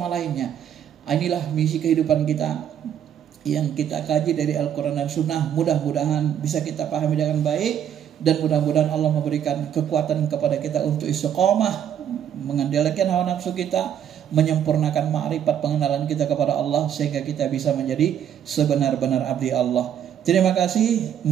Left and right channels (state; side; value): quieter; left; 9.5 dB